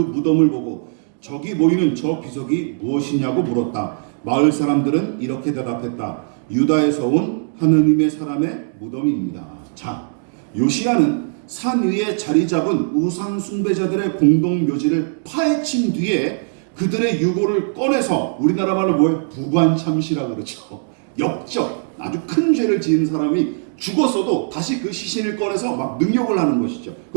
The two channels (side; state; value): left; silent; digital silence